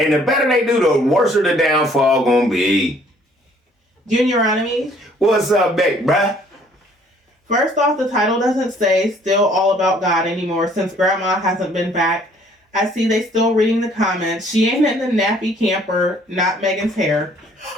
the better they do, the worse the downfall gonna be. Junior Enemies. What's up, babe, bruh? First off, the title doesn't say Still All About God anymore since Grandma hasn't been back. I see they still reading the comments. She ain't in the nappy camper, not Megan's hair.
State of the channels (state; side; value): normal; both; correlation 0.60